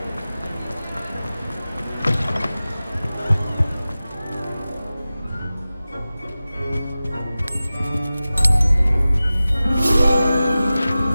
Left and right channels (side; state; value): both; inverted; correlation -0.96